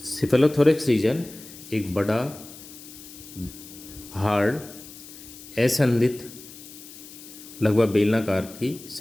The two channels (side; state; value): left; noise; hiss, 17 dB below the sound